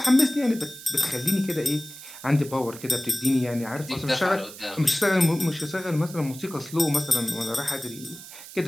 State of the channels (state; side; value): noise; right; hiss, 15 dB below the sound